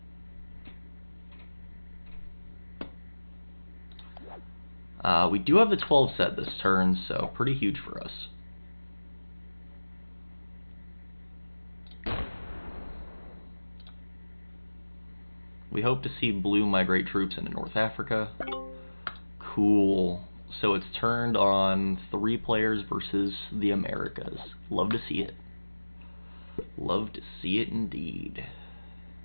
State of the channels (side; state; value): both; inverted; correlation -1.00